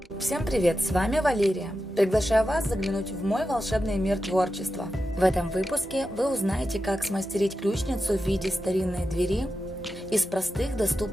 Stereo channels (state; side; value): normal; both; correlation 0.90